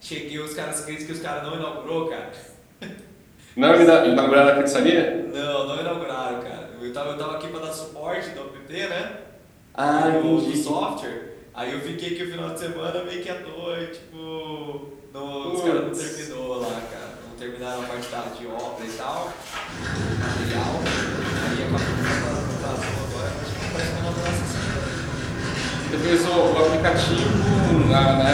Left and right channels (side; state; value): both; identical; correlation 1.00